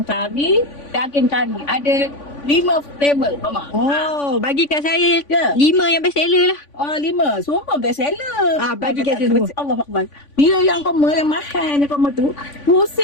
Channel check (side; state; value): right; late; 3.5 ms